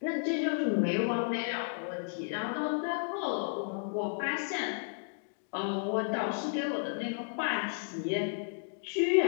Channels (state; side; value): silent; right; digital silence